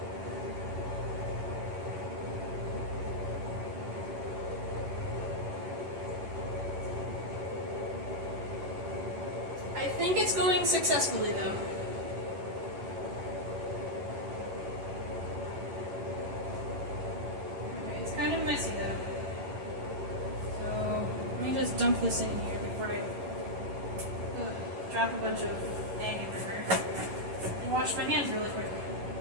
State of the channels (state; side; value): late; left; 11 ms